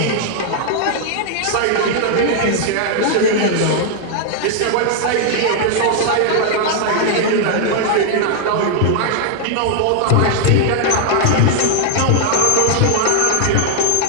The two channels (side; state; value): both; different; correlation 0.00